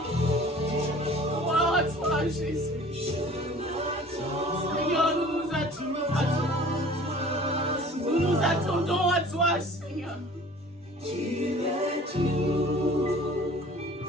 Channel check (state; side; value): normal; both; correlation 0.47